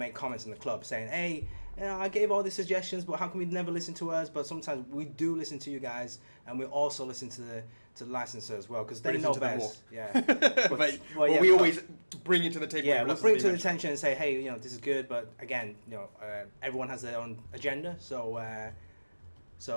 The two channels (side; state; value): both; inverted; correlation -1.00